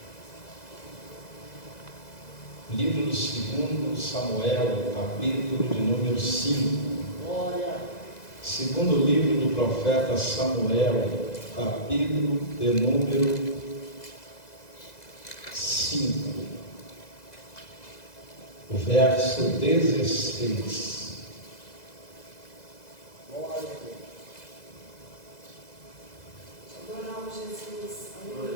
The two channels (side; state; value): right; late; 2.0 ms